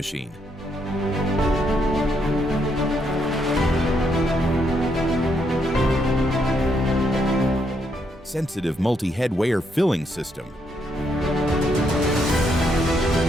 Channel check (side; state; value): both; normal; correlation 0.76